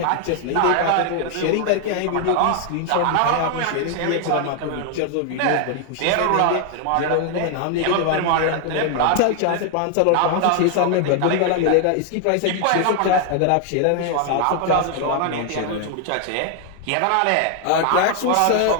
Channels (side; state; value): both; different; correlation 0.00